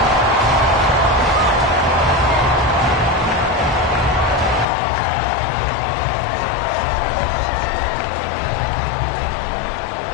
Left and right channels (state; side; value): drops out; right; at 4.7 s